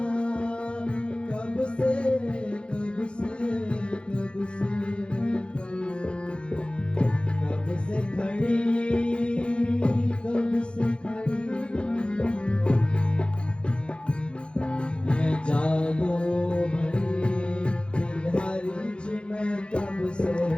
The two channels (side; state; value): right; late; 0.056 ms